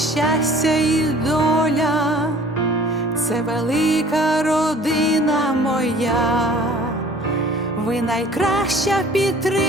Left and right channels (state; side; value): normal; both; correlation 0.50